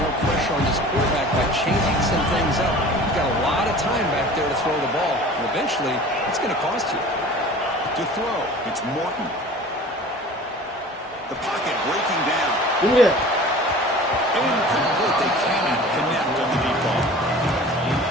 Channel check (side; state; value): both; normal; correlation 0.42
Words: pressure on this quarterback by changing some things up. You've got a lot of time back there to throw the ball. And eventually, it's going to cost you. To throw, it's Morton. The pocket breaking down. Yeah. Incomplete. They cannot connect on the deep ball.